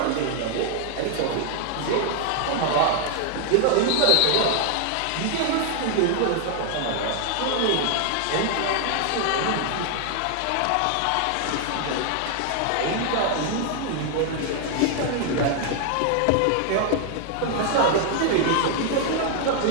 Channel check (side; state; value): both; different; correlation 0.00